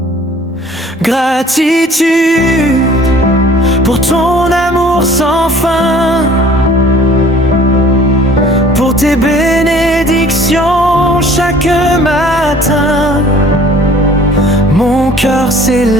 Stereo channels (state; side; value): normal; both; correlation 0.52